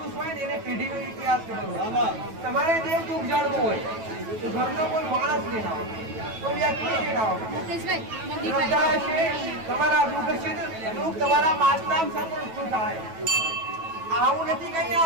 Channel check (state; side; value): late; left; 9.2 ms